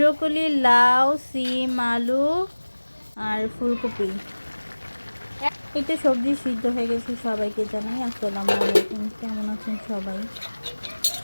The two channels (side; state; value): both; inverted; correlation -1.00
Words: লাউ, সিম, আলু আর ফুলকপি। এই তো সবজি সিদ্ধ হয়ে গেছে। সবাইকে জানাই আসসালামু আলাইকুম। কেমন আছেন সবাই?